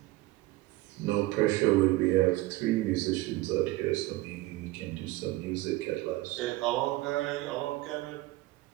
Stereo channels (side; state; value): left; quieter; 18.7 dB